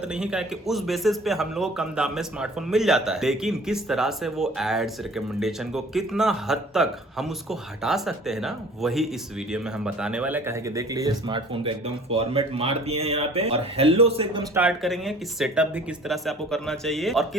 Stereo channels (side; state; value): both; normal; correlation 0.49